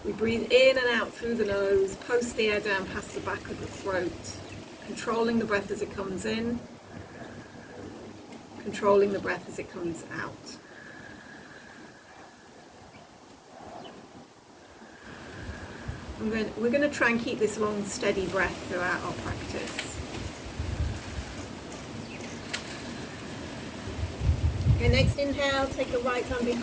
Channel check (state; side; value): identical; both; correlation 1.00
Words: we breathe in and out through the nose, post the air down past the back of the throat, controlling the breath as it comes in, controlling the breath as it comes out. We're going to try and keep this long, steady breath throughout our practice. Okay, next inhale, take the right arm